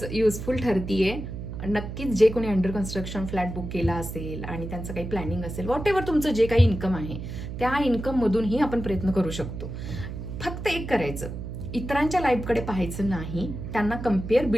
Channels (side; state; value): right; noise; hum, 7 dB below the sound